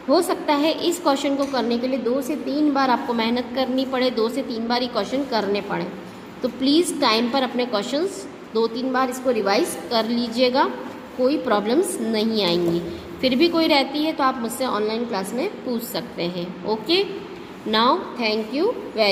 हो सकता है इस क्वेश्चन को करने के लिए 2 से 3 बार आपको मेहनत करनी पड़े, 2 से 3 बार ये क्वेश्चन करने पड़े। तो प्लीज़ टाइम पर अपने क्वेश्चंस 2-3 बार इसको रिवाइज कर लीजिएगा, कोई प्रॉब्लम्स नहीं आएंगी। फिर भी कोई रहती है तो आप मुझसे ऑनलाइन क्लास में पूछ सकते हैं। Okay, now thank you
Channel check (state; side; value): identical; both; correlation 1.00